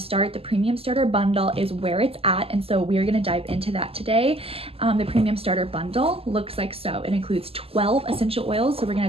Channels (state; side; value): late; left; 0.28 ms